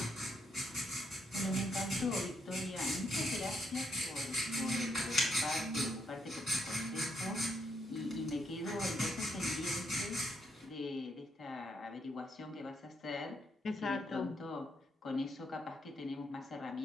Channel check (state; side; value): normal; both; correlation 0.77